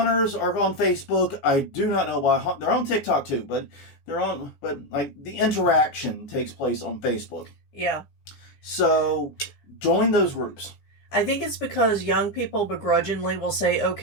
are on Facebook. I do not know why. They're on TikTok too, but the interaction takes place on Facebook. Yeah. So join those groups. I think it's because young people begrudgingly will say,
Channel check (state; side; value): late; right; 15 ms